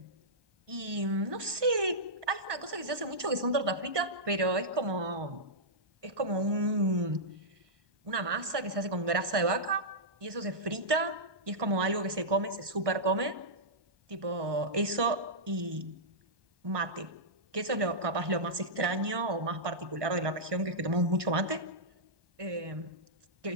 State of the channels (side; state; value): left; late; 1.2 ms